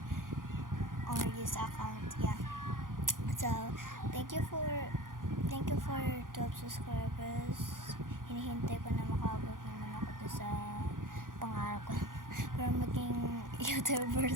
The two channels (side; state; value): left; late; 0.90 ms